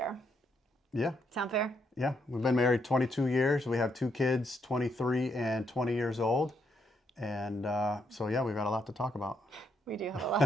Yeah. Sound fair? Yeah. We've been married 22 years. We have two kids, 23 and 20 years old. And so, we've got a lot to talk about. We do have a lot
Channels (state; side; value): normal; both; correlation 0.77